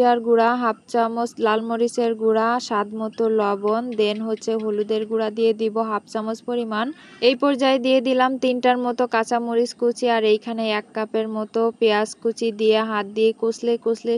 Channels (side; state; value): both; identical; correlation 1.00